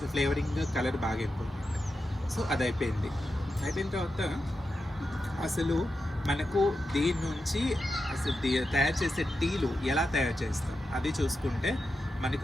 ఫ్లేవరింగ్ కలర్ బాగా ఇంపార్టెంట్. సో అది అయిపోయిన తర్వాత అసలు మనకు దీని నుంచి అసలు తయారు చేసే టీలు ఎలా తయారు చేస్తాం అది చూసుకుంటే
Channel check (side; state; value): both; normal; correlation 0.89